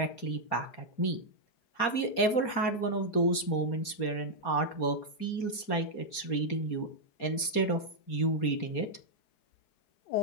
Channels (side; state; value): right; late; 4.3 ms